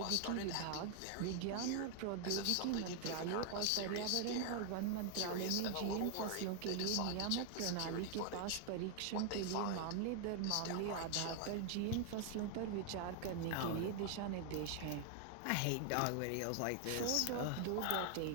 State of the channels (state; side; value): different; both; correlation 0.00